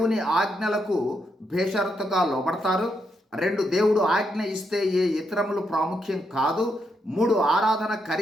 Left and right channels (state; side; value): normal; both; correlation 0.80